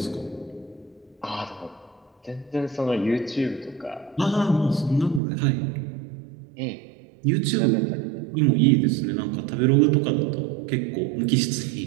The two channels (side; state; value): left; drops out; at 5.2 s